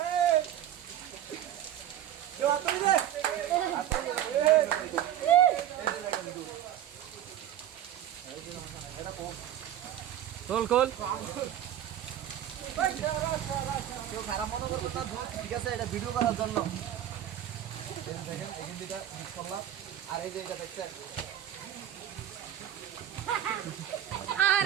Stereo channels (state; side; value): quieter; left; 11.3 dB